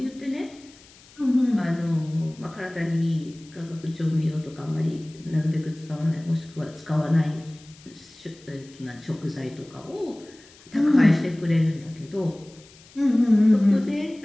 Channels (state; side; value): noise; left; hiss, 24 dB below the sound